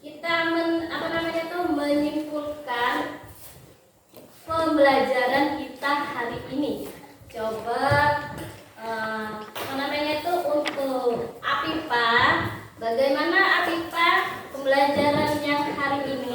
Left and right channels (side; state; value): both; identical; correlation 1.00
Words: kita menyimpulkan pembelajaran kita hari ini. Coba untuk Afifa, bagaimana Afifa pembelajaran yang hari